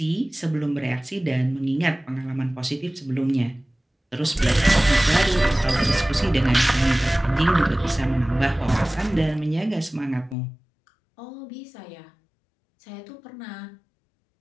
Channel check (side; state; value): right; drops out; at 10.4 s